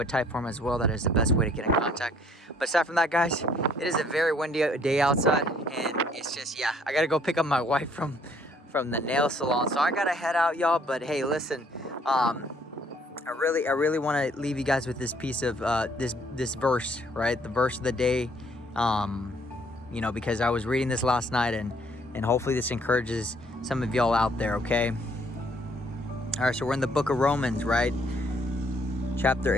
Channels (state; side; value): normal; both; correlation 0.63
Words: a type form as well. That is the best way to get in contact. But aside from that, guys, it is a very windy day outside, and it's just, yeah, I gotta go pick up my wife from the nail salon, so I gotta head out, y'all. But hey, listen, I really want to leave you guys with this piece of this verse, right? The verse of the day, you know, because I was reading this last night, and hopefully this encourages some of y'all out there, okay? All right, so we're in the book of Romans, right? Chapter